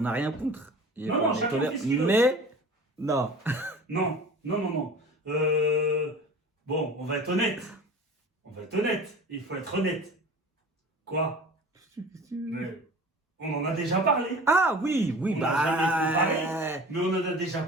n'a rien contre. Non, non, On chacun tolère- fait ce qu'il veut. Mais, non. Non, non, non, non. Bon, on va être honnête. On va être honnête. Il faut être honnête. Quoi? Mais on en a déjà parlé. Ah oui, oui, On bah... n'a jamais Mais on en a déjà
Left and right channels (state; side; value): normal; both; correlation 0.40